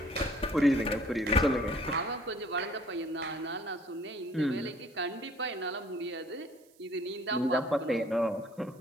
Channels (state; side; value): noise; right; hiss, 30 dB below the sound